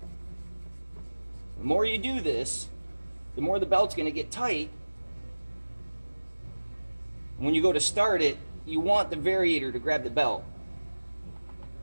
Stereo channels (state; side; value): inverted; both; correlation -1.00